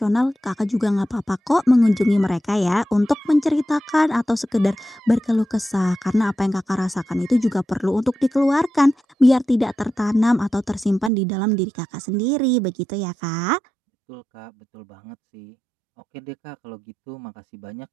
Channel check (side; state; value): left; drops out; at 11.1 s